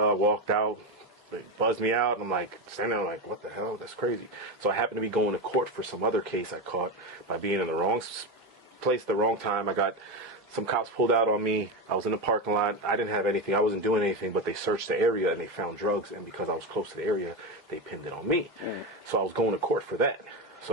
I walked out, they buzzed me out, and I'm like standing there like, what the hell? That's crazy. So I happened to be going to court for some other case I caught by being in the wrong place at the wrong time. I got some cops pulled out on me. I was in the parking lot. I didn't have anything. I wasn't doing anything, but they searched the area and they found drugs. And because I was close to the area, they pinned it on me. So I was going to court for that.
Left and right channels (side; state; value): both; normal; correlation 0.15